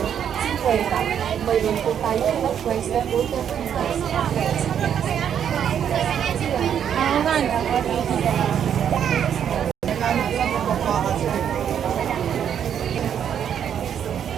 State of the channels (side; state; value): left; quieter; 8.8 dB